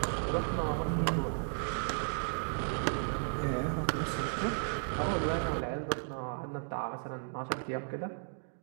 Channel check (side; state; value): left; silent; digital silence